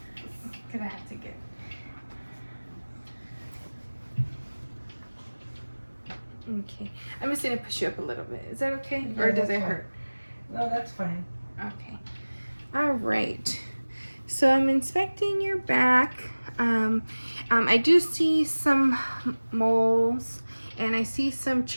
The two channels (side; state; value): both; inverted; correlation -1.00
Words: Because I have to get. Okay. I'm just going to push you up a little bit. Is that okay? Yeah, Or does that's it fine. hurt? No, that's fine. Okay. All right. So I'm inspecting your back. I do see some moles, and I see some